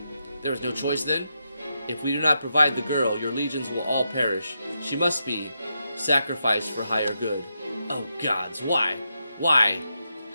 There is no choice then? If we do not provide the girl, your legions will all perish. She must be sacrificed for higher good. Oh gods, why? Why?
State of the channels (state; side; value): inverted; both; correlation -0.85